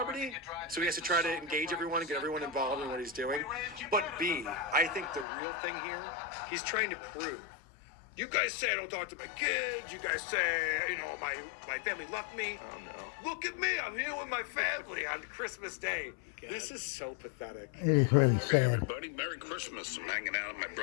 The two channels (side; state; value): right; drops out; at 5.2 s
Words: so he has to try to engage everyone and get everyone involved in what he's doing. But B, I think the real thing here, he's trying to prove. You guys say I don't talk to my kids. You guys say, my family left me. Oh, no. Look at me. I'm here with my family on Christmas Day. God. This is so pathetic. It is really Hey, sad. everybody. Merry Christmas. I'm hanging out at my